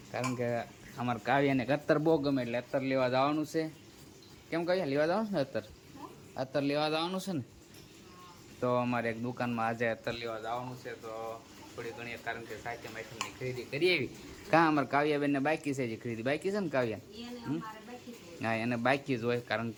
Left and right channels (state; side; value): identical; both; correlation 1.00